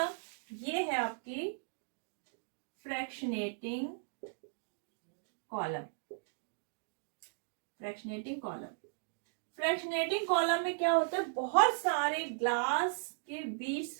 ये है आपकी fractionating column. Fractionating column, fractionating column में क्या होता है, बहुत सारे ग्लास के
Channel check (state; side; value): silent; left; digital silence